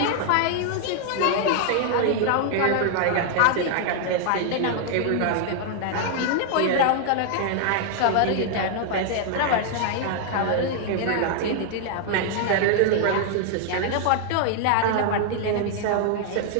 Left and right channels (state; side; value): different; both; correlation 0.00